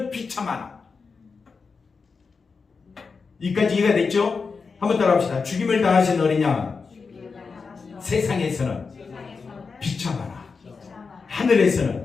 비참하나. 이까지 이해가 됐죠? 한번 따라합시다. 죽임을 당하신 어린 양, 세상에서는 비참하나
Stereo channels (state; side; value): quieter; right; 4.9 dB